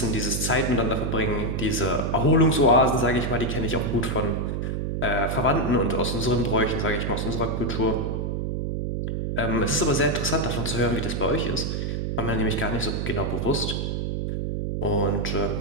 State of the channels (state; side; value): noise; right; hum, 1 dB below the sound